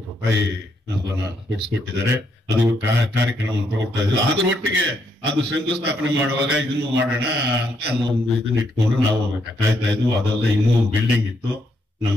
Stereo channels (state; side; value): normal; both; correlation 0.75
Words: ರೂಪಾಯಿ ಅನುದಾನ ಕೊಡಿಸ್ಕೊಟ್ಟಿದ್ದಾರೆ. ಅದು ಕಾರ್ಯಕ್ರಮ ತಗೊಳ್ತಾ ಇದ್ರು. ಅದರೊಟ್ಟಿಗೆ ಅದು ಶಂಕುಸ್ಥಾಪನೆ ಮಾಡುವಾಗ ಇದನ್ನು ಮಾಡೋಣ ಅಂತ ಒಂದು ಇದನ್ನ ಇಟ್ಕೊಂಡು ನಾವು ಕಾಯ್ತಾ ಇದ್ವು. ಅದೆಲ್ಲ ಇನ್ನೂ ಬಿಲ್ಡಿಂಗ್ ಇತ್ತು,